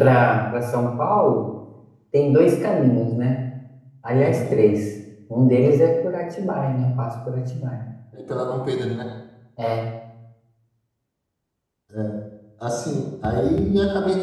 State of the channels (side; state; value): both; identical; correlation 1.00